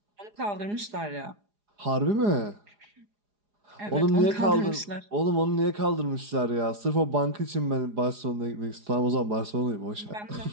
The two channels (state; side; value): late; left; 4.9 ms